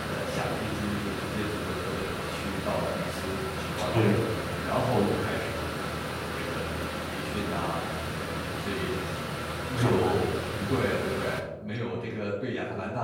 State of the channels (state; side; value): identical; both; correlation 1.00